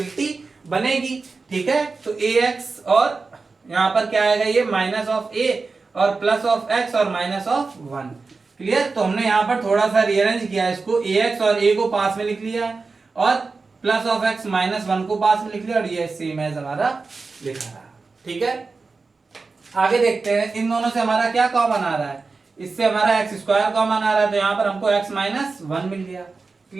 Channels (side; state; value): left; quieter; 4.2 dB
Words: बनेगी, ठीक है। तो ए एक्स और यहाँ पर क्या आएगा, ये माइनस ऑफ ए और प्लस ऑफ एक्स और माइनस ऑफ 1, क्लियर। तो हमने यहाँ पर थोड़ा सा रीअरेंज किया है इसको, ए एक्स और ए को पास में लिख लिया है और प्लस ऑफ एक्स माइनस 1 को पास में लिख लिया, और ये सेम एज हमारा लिखा रहा, ठीक है। आगे देखते हैं इन दोनों से हमारा क्या कॉमन आ रहा है, इससे हमारा एक्स स्क्वायर कॉमन आ रहा है, तो यहाँ पर हमको एक्स माइनस 1 मिल गया,